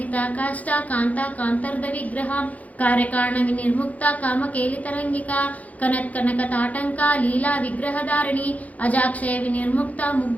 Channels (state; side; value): late; right; 0.073 ms